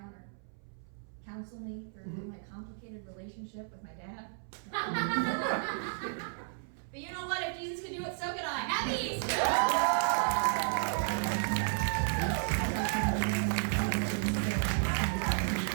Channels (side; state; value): left; silent; 56 dB below the other